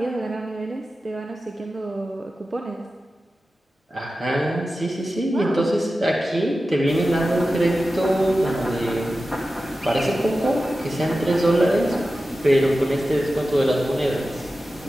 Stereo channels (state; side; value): normal; both; correlation 0.94